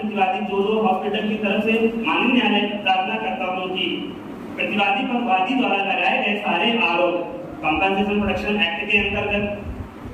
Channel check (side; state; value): both; identical; correlation 1.00